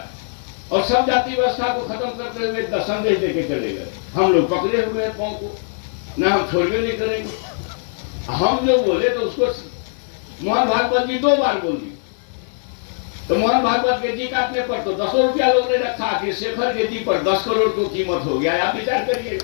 और सब जाति व्यवस्था को खत्म करते हुए एक संदेश देके चले गए। हम लोग पकड़े हुए हैं पाँव को, ना हम छोड़वे नहीं करेंगे। हम जो बोले तो उसको मोहन भागवत जी 2 बार बोली, तो मोहन भागवत के जी काटने पर तो 10 रुपया लोग ने रखा कि शेखर के जी पर 10 करोड़ की कीमत हो गया, आप विचार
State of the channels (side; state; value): right; silent; digital silence